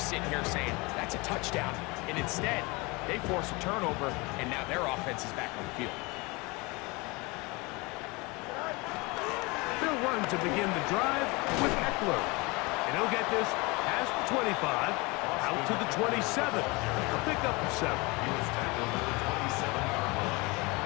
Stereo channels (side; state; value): right; quieter; 25.9 dB